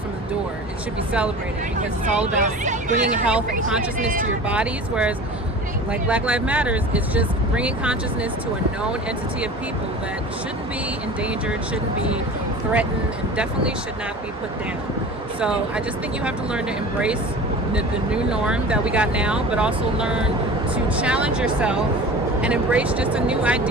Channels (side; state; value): both; normal; correlation 0.37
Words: the door. It should be celebrated because it's all about bringing health and consciousness to your bodies, whereas like Black Lives Matters is just bringing consciousness to a known entity of people that shouldn't be endangered, shouldn't be threatened, and definitely should not be put down. So I just think you have to learn to embrace the new norm that we got now, but also learn to challenge yourself and embrace just a new